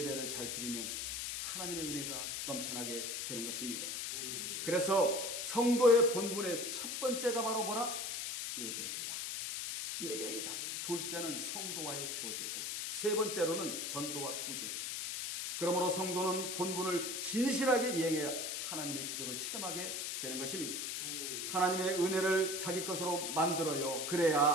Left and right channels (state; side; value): noise; left; hiss, 3 dB below the sound